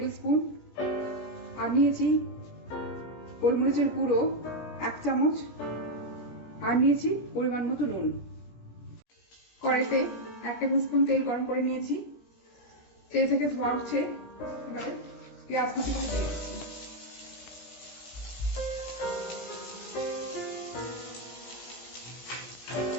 স্পুন। আর নিয়েছি গোলমরিচের গুঁড়ো 1 চামচ। আর নিয়েছি পরিমাণ মতো নুন। কড়াইতে 1 টেবিল স্পুন তেল গরম করে নিয়েছি। তেল থেকে ধোঁয়া উঠছে, এবারে পেঁয়াজ কুচিগুলো দিয়ে দিচ্ছি।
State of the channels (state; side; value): late; right; 17 ms